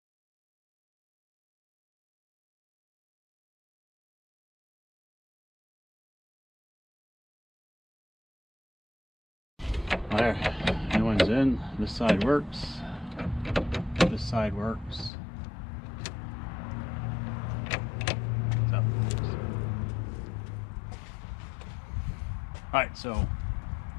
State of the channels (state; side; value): drops out; right; at 15.1 s